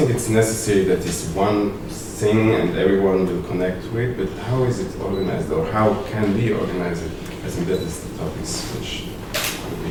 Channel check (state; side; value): identical; both; correlation 1.00